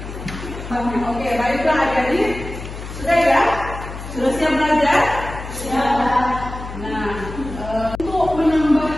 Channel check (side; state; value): left; noise; hum, 10 dB below the sound